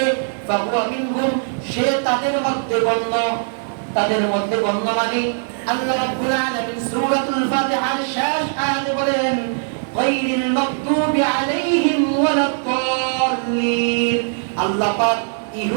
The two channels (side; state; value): left; silent; 62 dB below the other